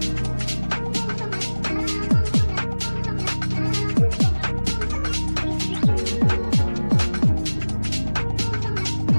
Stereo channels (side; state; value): both; inverted; correlation -1.00